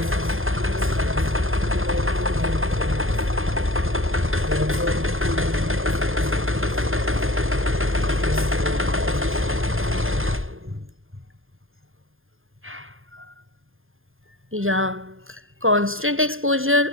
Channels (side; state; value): left; late; 0.60 ms